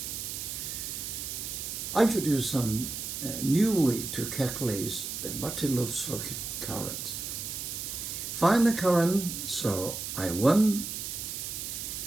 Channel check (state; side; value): noise; right; hiss, 5 dB below the sound